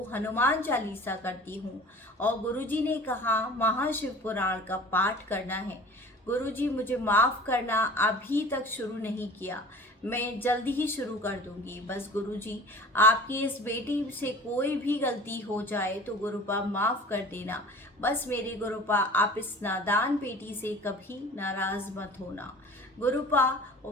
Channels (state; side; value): normal; both; correlation 0.42